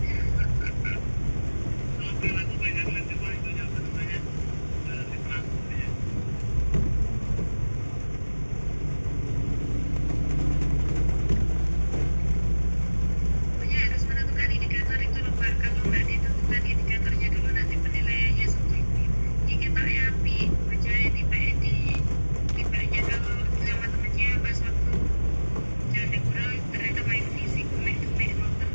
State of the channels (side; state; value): both; inverted; correlation -1.00